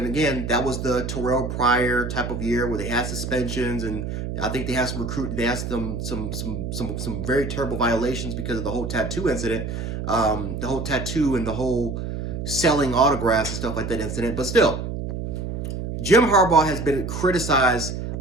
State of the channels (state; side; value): noise; right; hum, 5 dB below the sound